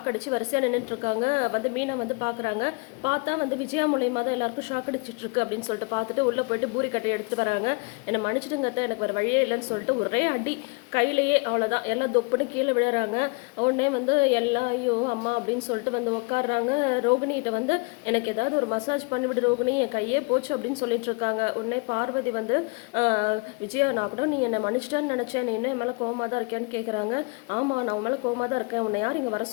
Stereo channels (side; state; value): right; quieter; 29.9 dB